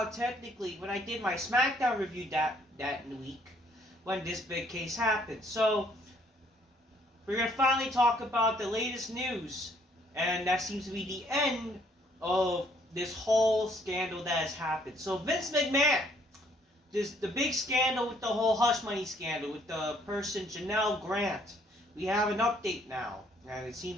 technically when I did my SmackDown review that week when this big case happened. So, we're going to finally talk about the latest news. And that seems to be the end of this whole scandal that has happened. So, Vince McMahon. The big scandal with the whole hush money scandal with the person Janelle Grant. We have an update now, and it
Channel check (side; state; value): both; normal; correlation 0.65